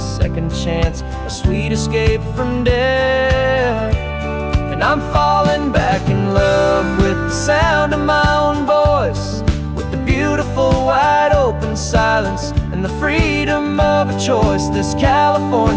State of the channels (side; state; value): both; identical; correlation 1.00